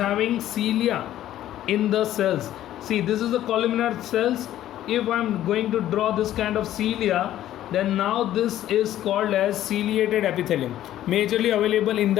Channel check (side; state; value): right; quieter; 12.8 dB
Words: cilia in the cells. See, this is the columnar cells. If I'm going to draw this kind of cilia, then now this is called as ciliated epithelium, majorly available in